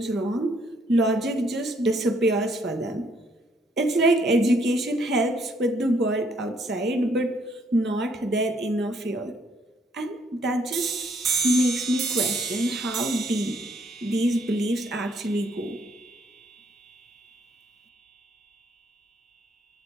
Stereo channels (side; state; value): both; normal; correlation 0.68